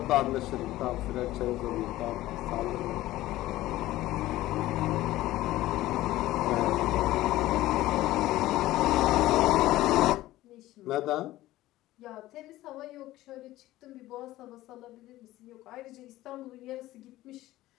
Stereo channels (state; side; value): quieter; right; 16.1 dB